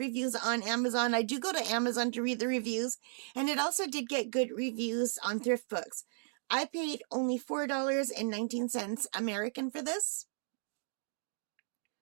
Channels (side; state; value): left; silent; digital silence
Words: on Amazon. I do go to Amazon to read the reviews, and it also did get good reviews on Thriftbooks. I paid only $4.19 American for this